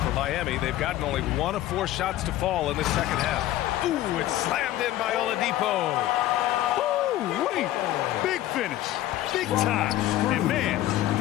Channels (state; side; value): quieter; right; 14.2 dB